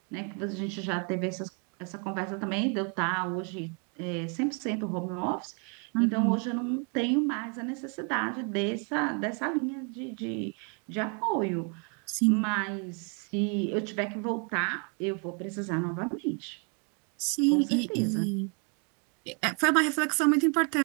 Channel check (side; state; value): left; quieter; 37.7 dB